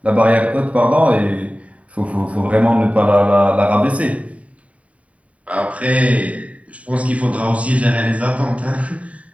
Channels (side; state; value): left; late; 0.066 ms